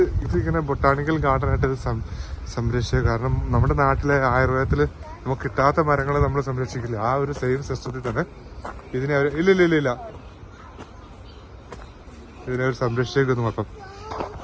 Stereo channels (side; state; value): both; identical; correlation 1.00